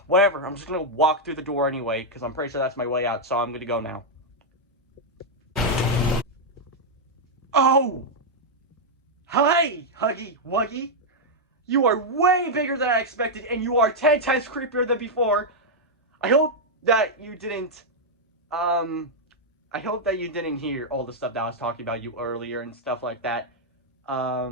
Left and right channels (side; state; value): both; normal; correlation -0.03